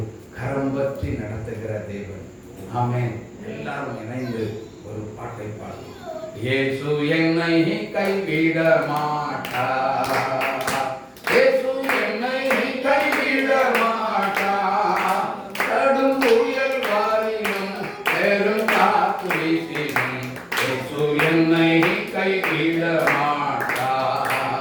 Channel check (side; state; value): both; identical; correlation 1.00